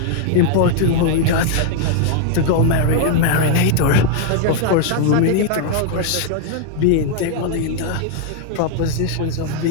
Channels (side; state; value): both; different; correlation 0.00